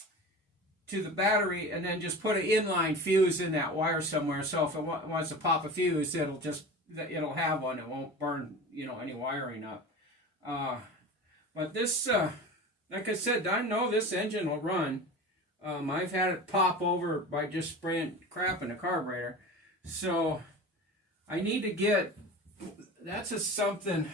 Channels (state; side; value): normal; both; correlation 0.33